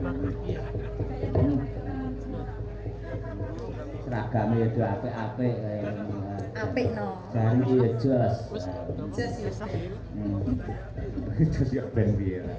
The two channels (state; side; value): identical; both; correlation 1.00